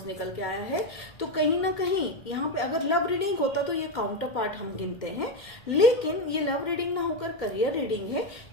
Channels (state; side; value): late; right; 2.1 ms